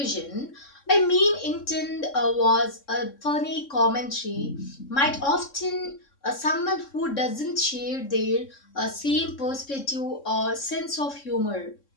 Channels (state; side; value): late; right; 3.6 ms